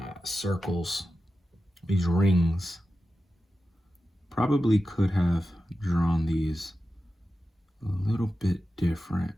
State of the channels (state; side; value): normal; both; correlation 0.92